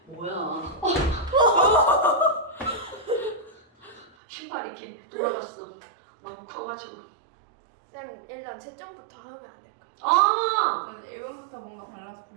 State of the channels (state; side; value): drops out; left; at 4.1 s